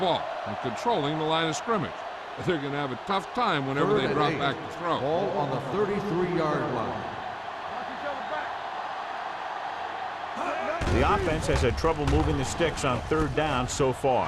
and controlling the line of scrimmage. They're going to have a tough time whenever they drop back to throw. Ball on the 33-yard line. The offense has had trouble moving the sticks on third down so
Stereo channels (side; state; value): both; identical; correlation 1.00